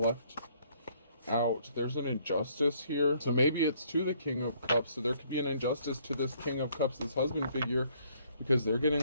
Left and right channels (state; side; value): inverted; both; correlation -0.65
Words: left out. There's an injustice here. So maybe it's to the King of Cups. So there could be an injustice to this King of Cups, this husband figure, because they're